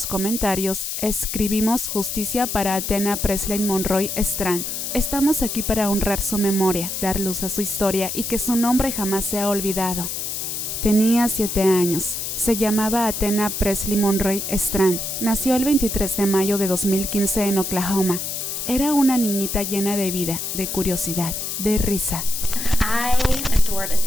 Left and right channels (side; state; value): left; noise; hiss, 4 dB below the sound